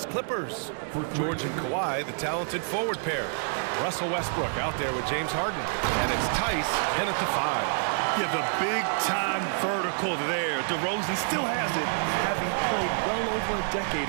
Clippers. George and Kawhi, the talented forward pair. Russell Westbrook out there with James Harden. And it's Tice in at the 5. Yeah, the big-time vertical there. DeRozan still has it, having played well over a decade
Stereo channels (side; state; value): left; silent; 60 dB below the other